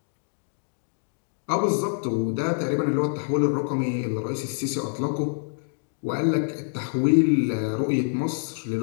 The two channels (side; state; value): right; silent; digital silence